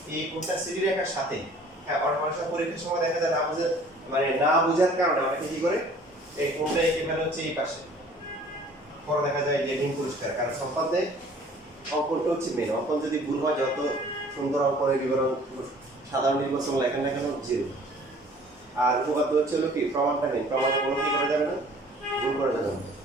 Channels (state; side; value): normal; both; correlation 0.52